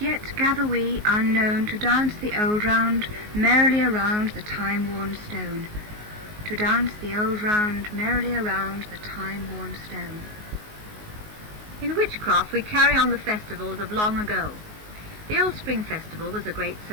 gather we unknown to dance the old round merrily around the time-worn stone. To dance the old round merrily around the time-worn stone. In Witchcraft we carry on the festivals of long ago. The Old Spring Festival was a great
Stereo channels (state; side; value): late; left; 19 ms